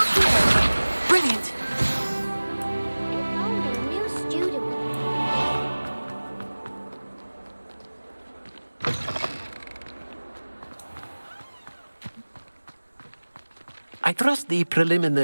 Brilliant! If only a new student. I trust the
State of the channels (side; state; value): both; inverted; correlation -1.00